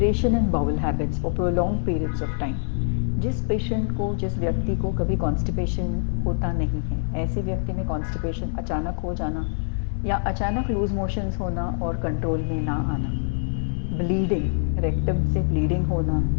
in bowel habits for prolonged periods of time. जिस पेशेंट को, जिस व्यक्ति को कभी कॉन्स्टिपेशन होता नहीं है, ऐसे व्यक्ति में कॉन्स्टिपेशन अचानक हो जाना या अचानक लूज मोशंस होना और कंट्रोल में ना आना, ब्लीडिंग, रेक्टम से ब्लीडिंग होना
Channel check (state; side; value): silent; right; digital silence